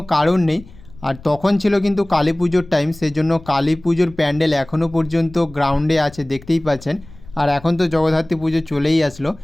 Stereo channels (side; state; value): left; noise; rumble, 21 dB below the sound